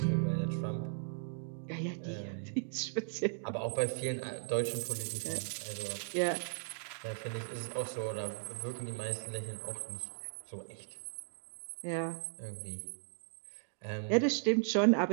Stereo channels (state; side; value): silent; left; digital silence